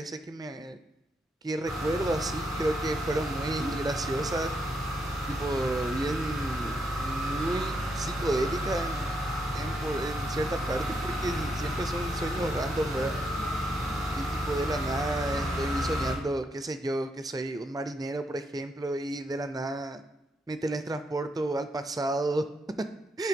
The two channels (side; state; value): both; normal; correlation 0.79